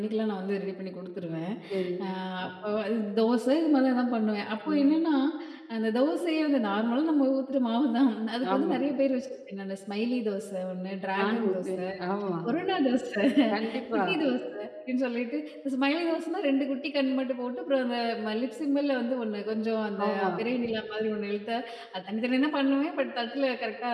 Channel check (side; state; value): both; identical; correlation 1.00